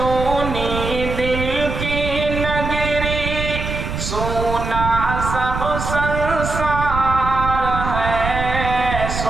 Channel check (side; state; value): right; noise; rumble, 5 dB below the sound